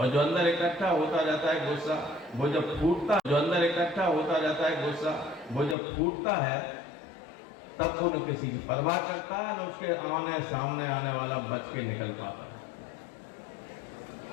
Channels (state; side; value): drops out; right; at 5.8 s